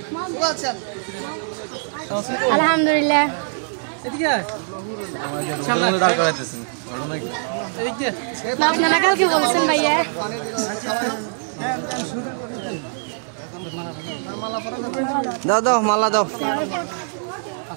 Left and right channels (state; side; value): silent; left; digital silence